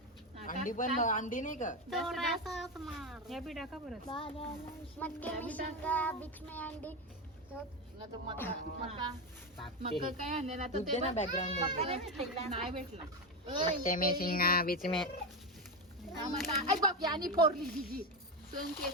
अंडी पण अंडी नाही का. थोडासा मार. हे बी टाका परत. मक्के में शिंगा, बीच में अंडी. मका काय आणले ना दूध दे ना बॅकग्राऊंड नाही भेटला. मक्के में शिंगा बीच में. आई बाप यानी फोडली तिची सण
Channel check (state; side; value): normal; both; correlation 0.13